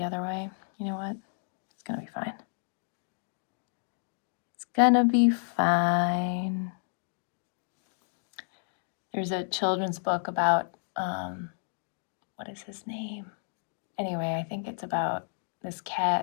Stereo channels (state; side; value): silent; right; digital silence